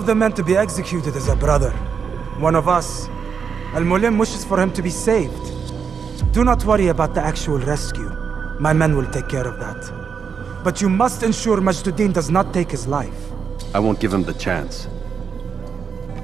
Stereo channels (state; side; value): quieter; left; 6.4 dB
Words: the men to be executed is a brother. One of us. Al-Mualim wishes for him to be saved. Do not worry about the actual rescue. My men will take care of that. But you must ensure Mejduddin does not take his life. I won't give him the chance.